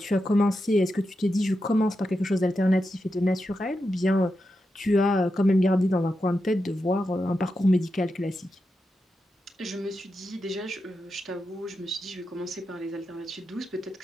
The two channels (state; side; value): normal; both; correlation 0.88